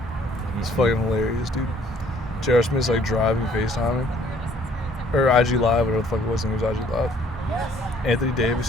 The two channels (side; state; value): both; normal; correlation 0.60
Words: It's fucking hilarious, dude. J.R. Smith's like driving, FaceTiming. Or IG Live, whatever the fuck it was, I think it was IG Live. Anthony